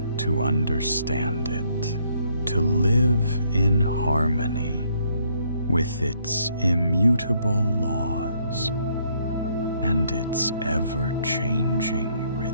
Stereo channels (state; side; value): inverted; both; correlation -0.69